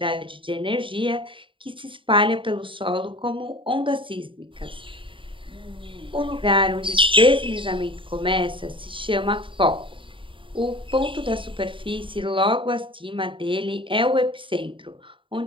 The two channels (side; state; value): left; late; 0.25 ms